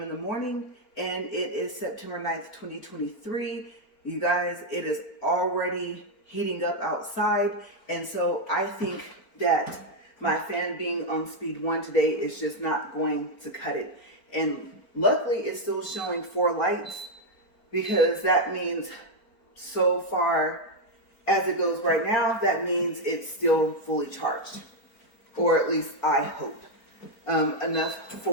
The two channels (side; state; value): right; late; 4.4 ms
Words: the morning, and it is September 9th, 2023. You guys, it is already heating up outside, and so I think that my fan being on speed 1 today is just not going to cut it. And luckily, it's still showing 4 lights, because that means so far as it goes right now, that means it's still fully charged, or at least I hope, enough